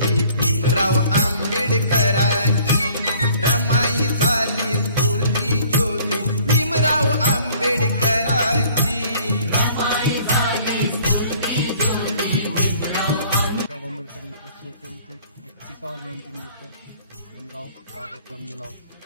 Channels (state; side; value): inverted; both; correlation -0.55